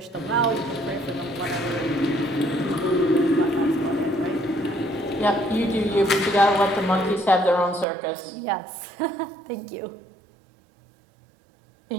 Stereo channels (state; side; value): drops out; left; at 7.9 s